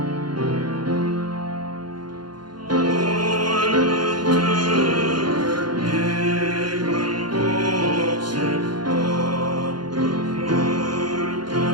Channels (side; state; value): left; late; 0.71 ms